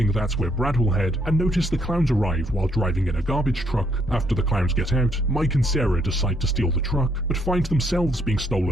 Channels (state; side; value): normal; both; correlation 0.71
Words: that's where Brad will head, and notice the clowns arrive while driving in a garbage truck. After the clowns get out, Mike and Sarah decide to steal the truck, but find themselves being